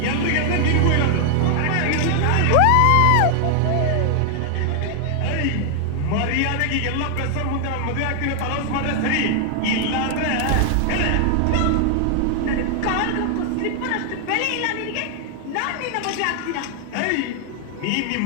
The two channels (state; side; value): different; both; correlation 0.00